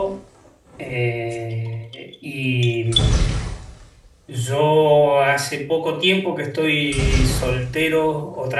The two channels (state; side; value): identical; both; correlation 1.00